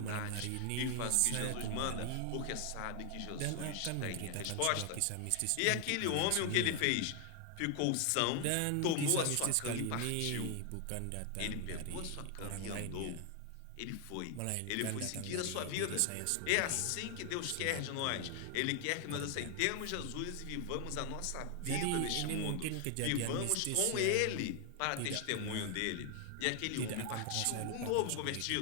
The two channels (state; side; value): different; both; correlation 0.00